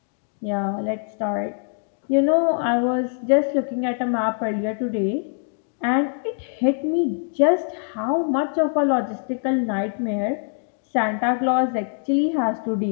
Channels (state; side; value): silent; right; 63 dB below the other